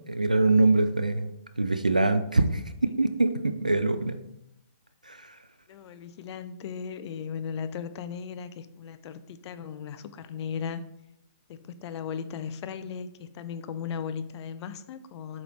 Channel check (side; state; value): both; inverted; correlation -0.85